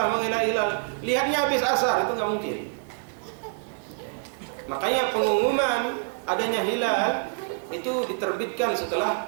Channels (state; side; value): silent; left; digital silence